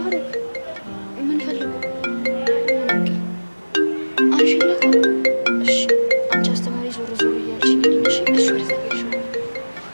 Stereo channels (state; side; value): inverted; both; correlation -1.00